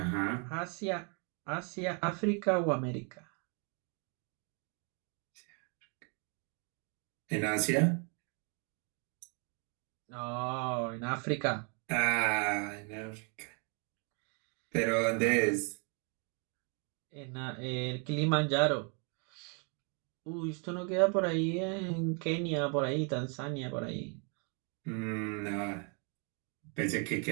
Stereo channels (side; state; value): left; quieter; 37.7 dB